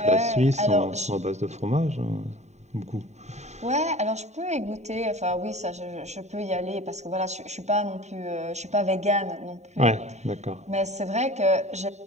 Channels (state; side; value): late; left; 0.33 ms